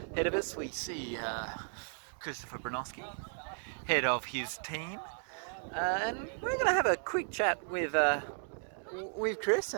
Ahead of us we see Christopher Branoski, head of his team, and we're going to have a quick chat with Chris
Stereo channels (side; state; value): left; silent; 54 dB below the other